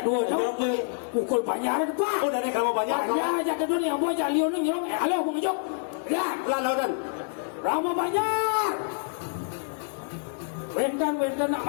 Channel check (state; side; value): silent; right; digital silence